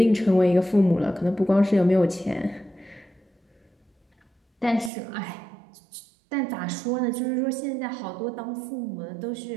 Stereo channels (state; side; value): drops out; left; at 4.9 s